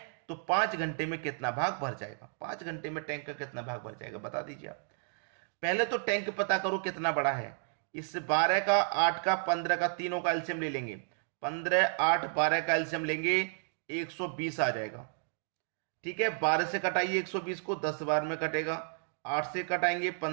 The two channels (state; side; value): silent; left; 56 dB below the other